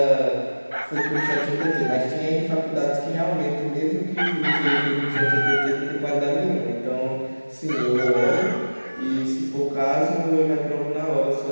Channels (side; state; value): both; inverted; correlation -1.00